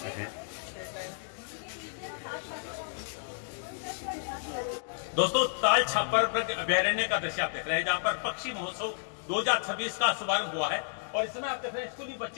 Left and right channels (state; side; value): silent; right; digital silence